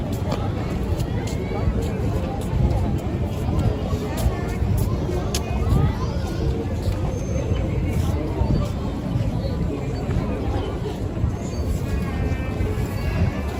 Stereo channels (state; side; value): identical; both; correlation 1.00